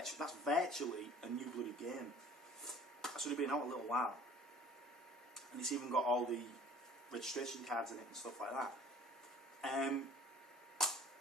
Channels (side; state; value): both; normal; correlation 0.49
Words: virtually a new bloody game. That's only been out a little while, and it's even got all the registration cards in it and stuff like that.